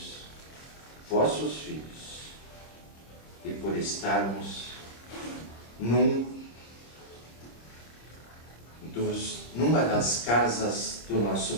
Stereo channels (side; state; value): right; late; 26 ms